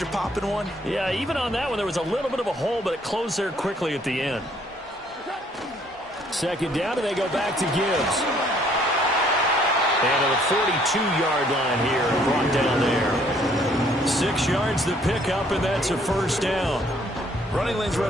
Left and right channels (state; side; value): normal; both; correlation 0.63